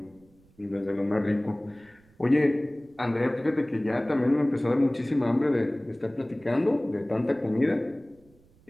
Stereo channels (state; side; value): noise; right; rumble, 30 dB below the sound